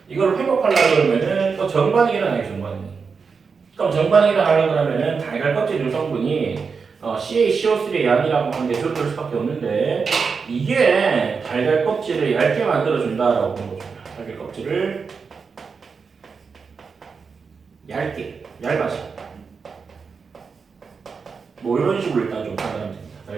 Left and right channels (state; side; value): quieter; left; 5.3 dB